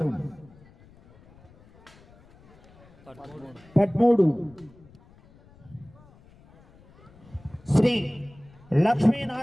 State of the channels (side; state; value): left; noise; rumble, 26 dB below the sound